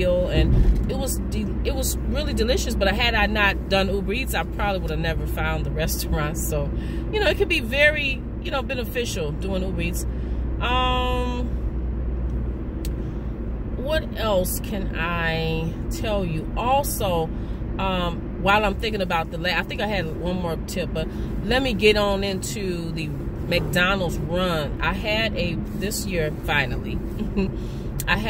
and it was really delicious. But had I not done Uber Eats, I probably would have never found the restaurant. So, it can be very you know, beneficial doing Uber Eats. What else can I tell you? Also, while I'm thinking about I think I had one more tip, but let me get on into the McDonald's run. I had this year, finally, I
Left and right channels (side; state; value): both; identical; correlation 1.00